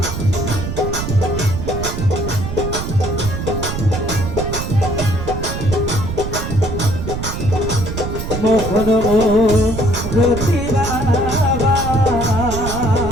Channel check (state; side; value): noise; right; rumble, 5 dB below the sound